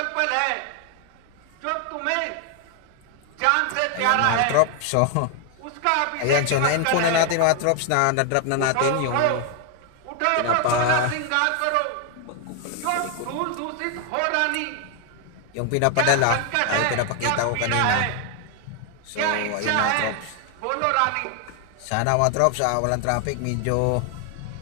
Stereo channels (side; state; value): both; different; correlation 0.00